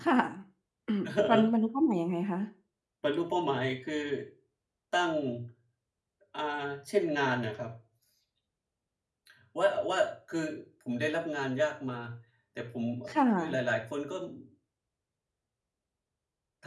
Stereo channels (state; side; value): identical; both; correlation 1.00